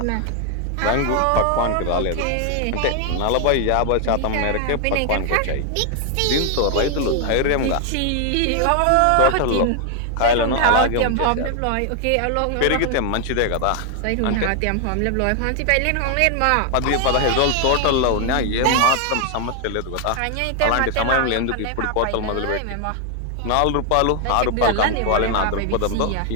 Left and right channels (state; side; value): different; both; correlation 0.00